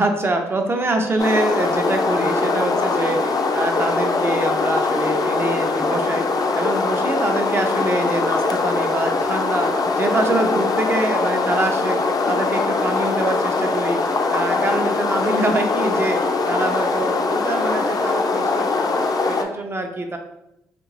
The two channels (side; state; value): both; normal; correlation 0.68